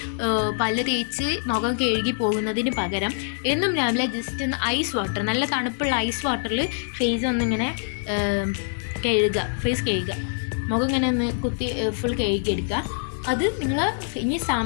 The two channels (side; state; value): right; silent; digital silence